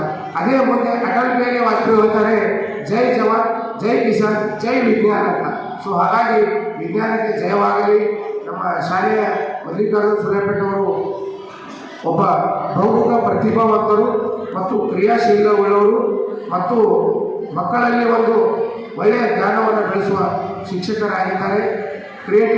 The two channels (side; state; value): both; identical; correlation 1.00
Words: ಅದೇ ಮುಂದೆ ಅಟಲ್ ಬಿಹಾರಿ ವಾಜಪೇಯಿ ಹೇಳ್ತಾರೆ ಜೈ ಜವಾನ್ ಜೈ ಕಿಸಾನ್ ಜೈ ವಿಜ್ಞಾನ ಅಂತ. ಸೊ ಹಾಗಾಗಿ ವಿಜ್ಞಾನಕ್ಕೆ ಜಯವಾಗಲಿ. ನಮ್ಮ ಶಾಲೆಯ ಮಲ್ಲಿಕಾರ್ಜುನ್ ಸುಲೇಪೇಟ್ ಅವರು ಒಬ್ಬ ಬಹುಮುಖ ಪ್ರತಿಭಾವಂತರು ಮತ್ತು ಕ್ರಿಯಾಶೀಲವುಳ್ಳವರು ಮತ್ತು ಮಕ್ಕಳಲ್ಲಿ ಒಂದು ಒಳ್ಳೆಯ ಜ್ಞಾನವನ್ನು ಬೆಳೆಸುವ ಶಿಕ್ಷಕರಾಗಿದ್ದಾರೆ,